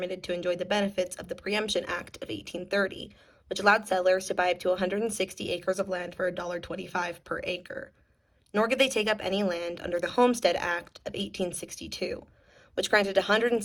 to enjoy the benefits of the Preemption Act of 1830, which allowed settlers to buy up to 160 acres of land for $1.25 per acre. Nor could they take up any land under the Homestead Act of 1862, which granted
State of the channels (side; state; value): both; identical; correlation 1.00